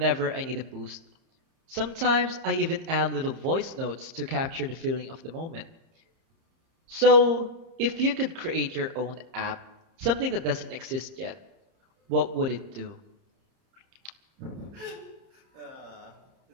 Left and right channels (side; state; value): left; late; 30 ms